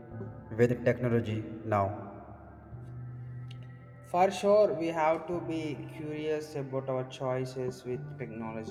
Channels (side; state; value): both; identical; correlation 1.00